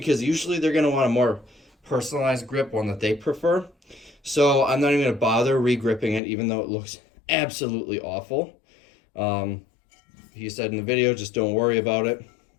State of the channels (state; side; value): drops out; right; at 6.2 s